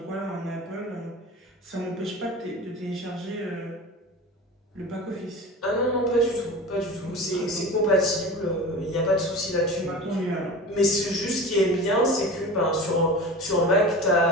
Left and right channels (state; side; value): normal; both; correlation 0.33